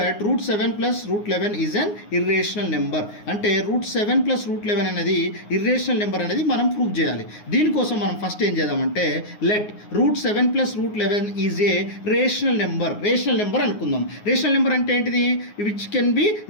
root 7 plus root 11 is an irrational number. అంటే root 7 plus root 11 అనేది irrational number అనేది మనం ప్రూవ్ చేయాలి. దీనికోసం మనం ఫస్ట్ ఏం చేద్దామంటే let root 7 plus root 11 is a rational number. Rational number అనుకుందాం. రేషనల్ నెంబర్ అంటే ఏంటిది, which can be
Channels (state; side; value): late; right; 9.6 ms